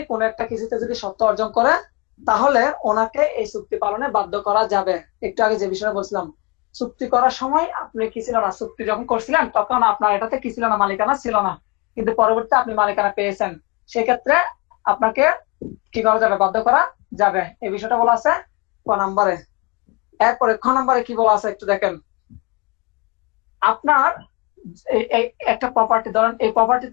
কোনো একটা কিছুতে যদি সত্য অর্জন করে, তাহলে ওনাকে এই চুক্তি পালনে বাধ্য করা যাবে। একটু আগে যে বিষয়ে বলছিলাম, চুক্তি করার সময় আপনি কি ছিল না, চুক্তি যখন করছিলেন তখন আপনার এটাতে কি ছিল না, মালিকানা ছিল না, কিন্তু পরবর্তীতে আপনি মালিকানা পেয়েছেন, সেক্ষেত্রে আপনাকে কি করা যাবে, বাধ্য করা যাবে। এই বিষয়টা বলা আছে ক নাম্বারে। এরপরে খ নাম্বারে কি বলা আছে একটু দেখেন। আপনার একটা প্রপার্টি, ধরেন এই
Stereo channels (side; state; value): right; quieter; 26.1 dB